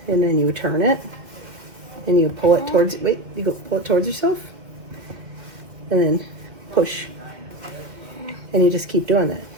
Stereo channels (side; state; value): left; late; 2.2 ms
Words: And then you turn it. And you pull it towards, wait, you go pull it towards yourself. And then push. And you just keep doing that.